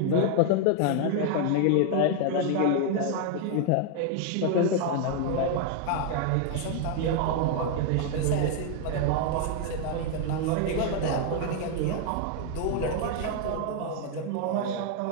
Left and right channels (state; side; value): different; both; correlation 0.00